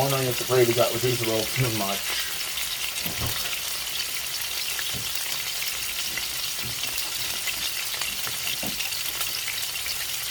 if the gravy got reduced a little too much.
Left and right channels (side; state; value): both; identical; correlation 1.00